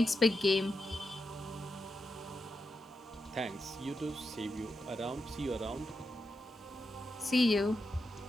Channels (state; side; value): normal; both; correlation 0.87